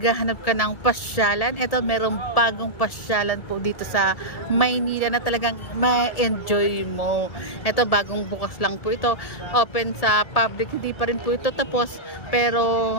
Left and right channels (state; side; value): late; right; 1.7 ms